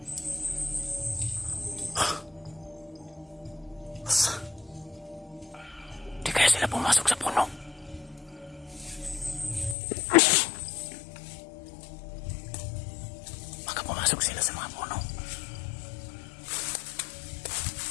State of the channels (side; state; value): right; drops out; at 9.8 s